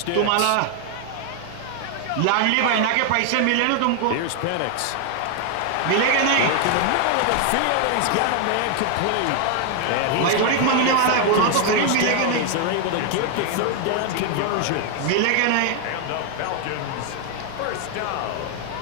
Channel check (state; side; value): different; both; correlation 0.00